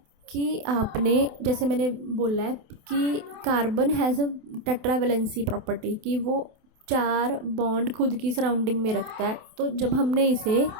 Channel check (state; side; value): late; left; 28 ms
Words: कि आपने, जैसे मैंने बोला है कि carbon has a tetravalency property, कि वो 4 बॉन्ड खुद की सराउंडिंग में रखता है। तो जब हमने इसे